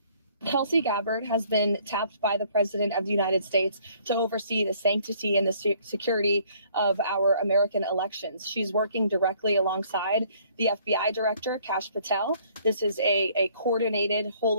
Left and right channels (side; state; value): both; inverted; correlation -0.61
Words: Tulsi Gabbard has been tapped by the President of the United States to oversee the sanctity and the security of our American elections. She's working directly alongside the FBI Director, Kash Patel. This is a coordinated